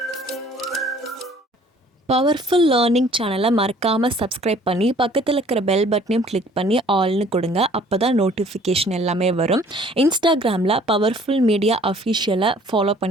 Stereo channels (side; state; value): both; normal; correlation 0.55